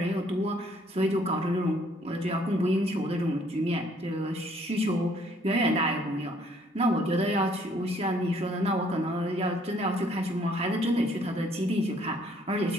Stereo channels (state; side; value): normal; both; correlation 0.63